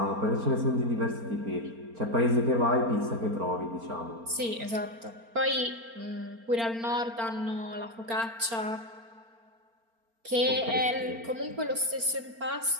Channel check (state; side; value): late; left; 4.4 ms